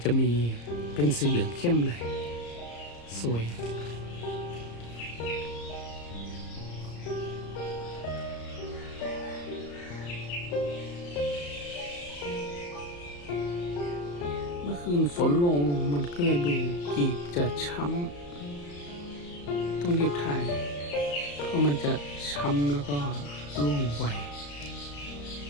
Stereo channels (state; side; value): late; right; 34 ms